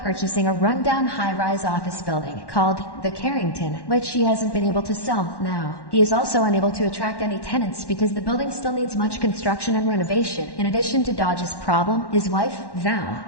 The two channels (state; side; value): late; right; 1.1 ms